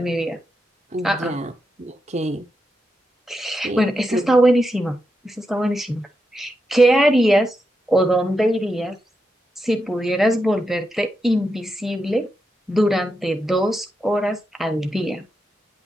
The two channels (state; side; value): normal; both; correlation 0.86